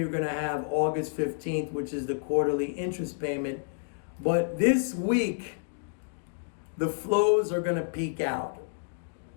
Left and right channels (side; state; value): right; silent; digital silence